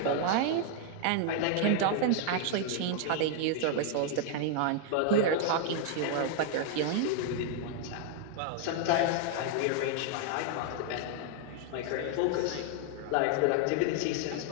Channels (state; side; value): different; both; correlation 0.00